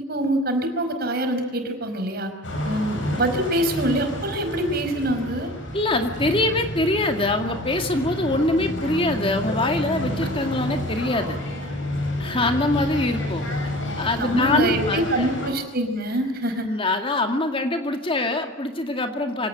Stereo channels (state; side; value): normal; both; correlation 0.41